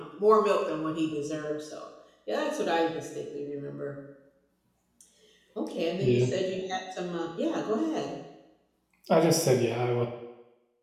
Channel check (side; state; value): both; identical; correlation 1.00